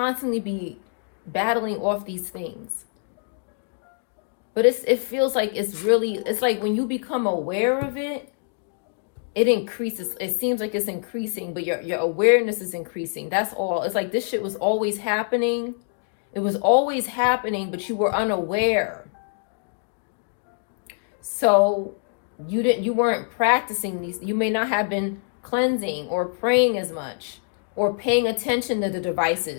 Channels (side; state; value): right; silent; digital silence